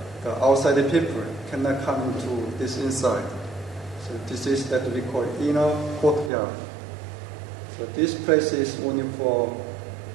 outside people cannot come into this inside. So this is that we call inner courtyard. So this place is only for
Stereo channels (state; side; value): drops out; left; at 6.3 s